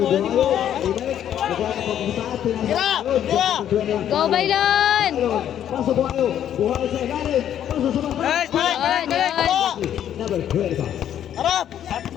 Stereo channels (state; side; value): quieter; right; 10.3 dB